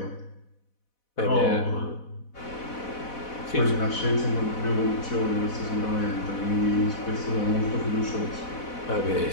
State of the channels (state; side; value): late; right; 4.1 ms